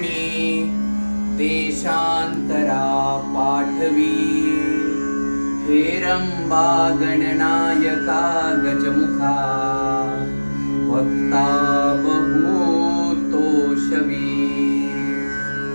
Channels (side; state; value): both; inverted; correlation -1.00